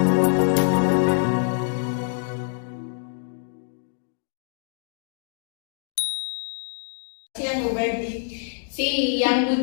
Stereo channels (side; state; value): right; silent; digital silence